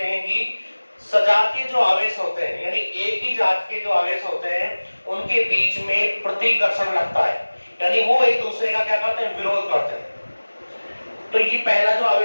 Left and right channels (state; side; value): inverted; both; correlation -1.00